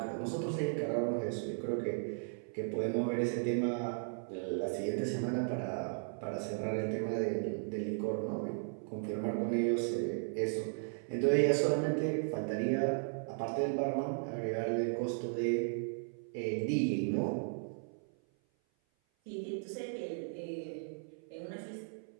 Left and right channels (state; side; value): silent; left; 54 dB below the other